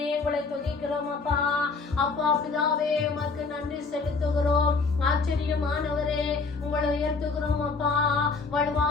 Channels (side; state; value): right; quieter; 4.3 dB